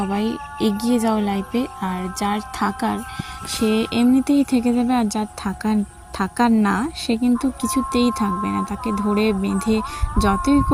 এগিয়ে যাও লাইফে, আর যার থাকার সে এমনিতেই থেকে যাবে, আর যার থাকার থাকার না সে কিন্তু কিছুতেই থাকবে না। তাকে ধরে বেঁধে যতই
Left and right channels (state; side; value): identical; both; correlation 1.00